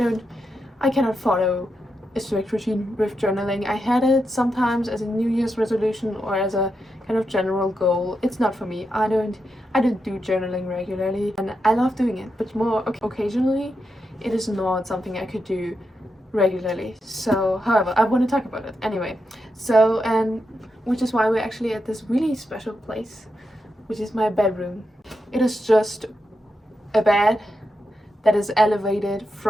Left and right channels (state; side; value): normal; both; correlation 0.86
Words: cannot follow a strict routine with journaling. I had it sometimes as a New Year's resolution or as a kind of general goal. It's not for me. I don't do journaling regularly, and I love doing it, but more occasionally. It is not something I could do regularly. So, however, I want to talk about it anyway. So, and which is why we're actually at this really special place, which is my bedroom. It is just a bed that is elevated